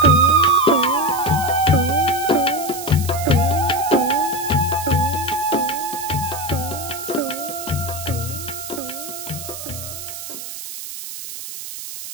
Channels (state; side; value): noise; right; hiss, 9 dB below the sound